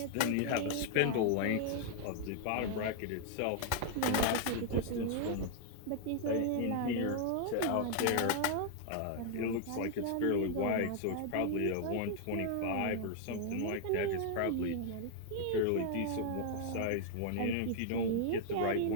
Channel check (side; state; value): both; different; correlation 0.00